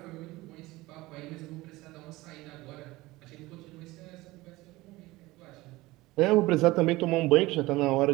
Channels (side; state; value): left; quieter; 19.7 dB